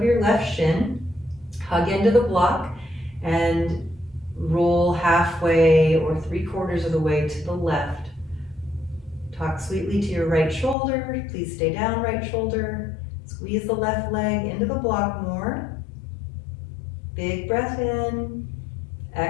your left shin. Hug into the block and roll halfway or 3/4 of the way to the left. Talk sweetly to your right shoulder. Please stay down, right shoulder. Squeeze the left leg into the block more. Big breath in.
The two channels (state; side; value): drops out; right; at 10.8 s